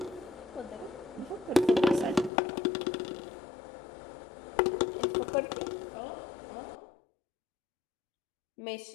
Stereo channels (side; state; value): right; drops out; at 2.3 s